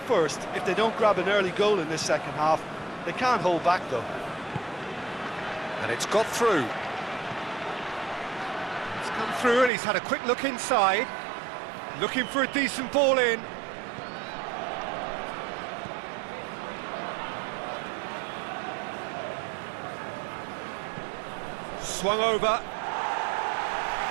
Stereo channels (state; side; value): drops out; left; at 9.7 s